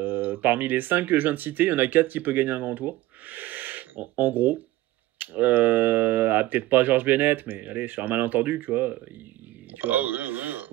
parmi les 5 que je viens de citer, il y en a 4 qui peuvent gagner un grand tour. En gros. Peut-être pas George Bennett, mais allez, sur un malentendu, tu vois. Tu vois. Oui.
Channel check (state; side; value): quieter; left; 16.7 dB